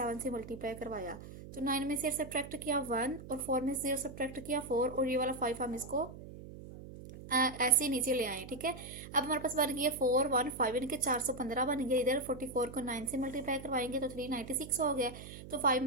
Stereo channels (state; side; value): noise; right; hum, 14 dB below the sound